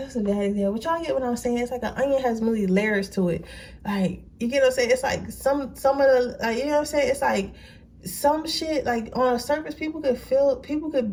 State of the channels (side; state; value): both; identical; correlation 1.00